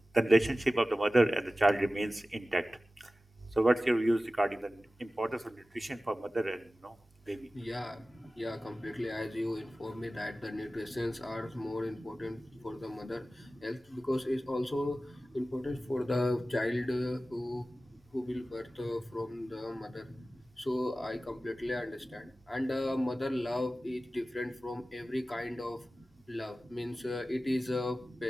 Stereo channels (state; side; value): normal; both; correlation 0.96